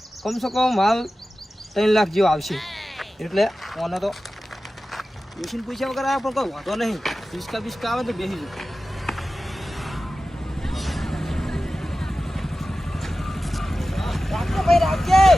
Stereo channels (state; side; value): normal; both; correlation 0.95